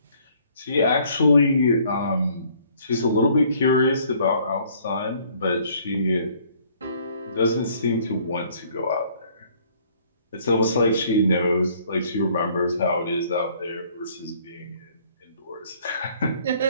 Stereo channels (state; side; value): inverted; both; correlation -0.60